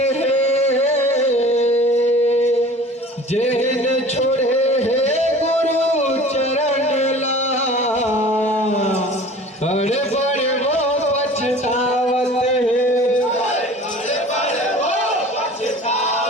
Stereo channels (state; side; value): normal; both; correlation 0.44